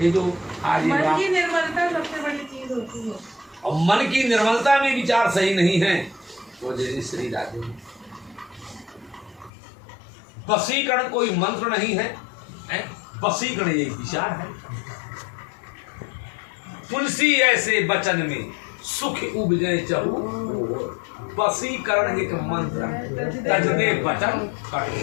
ये जो आज मन की निर्मलता सबसे बड़ी चीज होती है। और मन की निर्मलता में विचार सही नहीं है तो जैसे श्री राधे वशीकरण कोई मंत्र नहीं है, वशीकरण यही विचार है। तुलसी ऐसे वचन में सुख उपजे चहु, वशीकरण एक मंत्र तजदे वचन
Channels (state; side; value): drops out; right; at 9.5 s